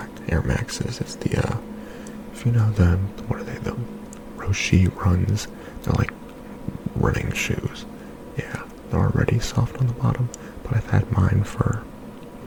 Air Maxes. It's the if you know what are they, the Roshi runs. They're like running shoes. Yeah, they're already soft on the bottom, but I've had mine for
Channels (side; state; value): both; identical; correlation 1.00